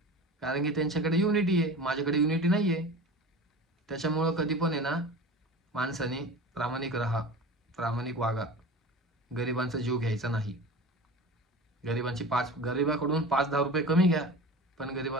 कारण की त्यांच्याकडे युनिटी आहे, माझ्याकडे युनिटी नाही आहे. त्याच्यामुळं कधी पण आहे ना, माणसाने प्रामाणिक राहा, प्रामाणिक वागा, गरिबांचा जीव घ्यायचा नाही. गरिबाकडून 5-10 रुपये कमी घ्या, पण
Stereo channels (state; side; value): normal; both; correlation 0.34